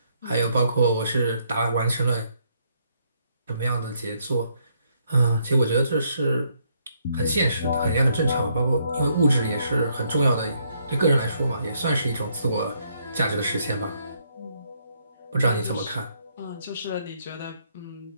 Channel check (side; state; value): both; inverted; correlation -0.72